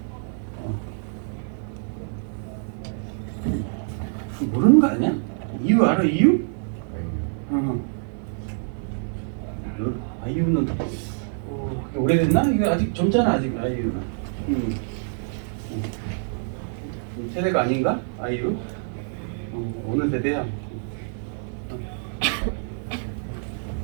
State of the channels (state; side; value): silent; left; digital silence